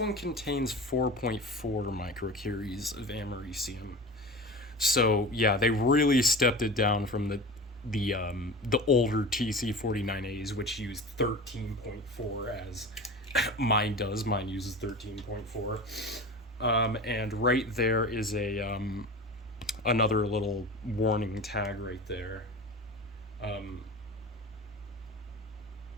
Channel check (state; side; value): normal; both; correlation 0.32